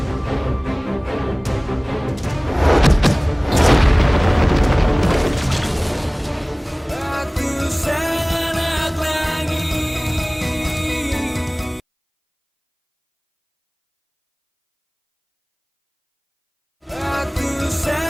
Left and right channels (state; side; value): identical; both; correlation 1.00